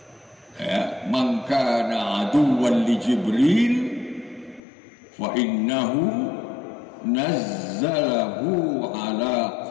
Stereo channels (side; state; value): right; drops out; at 4.6 s